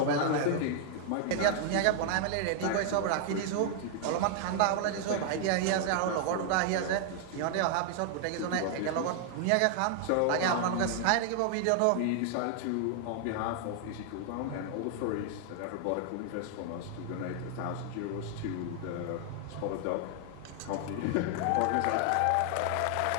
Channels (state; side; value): different; both; correlation 0.00